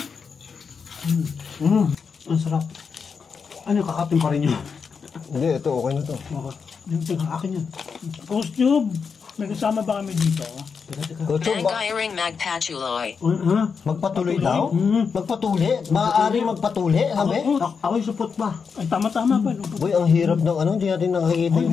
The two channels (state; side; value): quieter; right; 5.8 dB